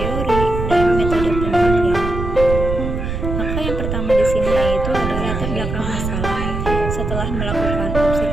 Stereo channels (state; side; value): noise; right; rumble, 3 dB below the sound